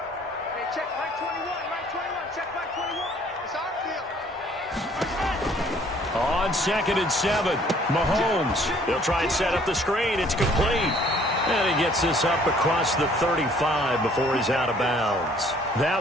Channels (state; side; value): normal; both; correlation 0.59